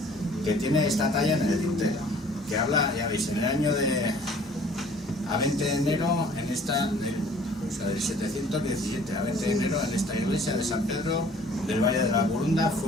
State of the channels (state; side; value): normal; both; correlation 0.53